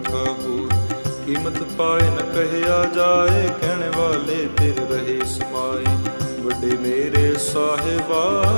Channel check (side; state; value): both; inverted; correlation -1.00